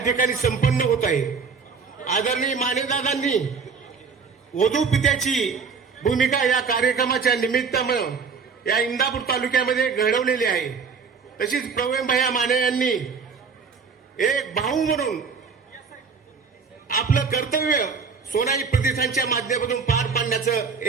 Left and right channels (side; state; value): left; quieter; 5.5 dB